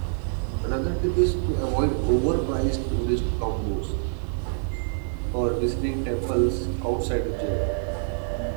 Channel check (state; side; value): silent; left; 61 dB below the other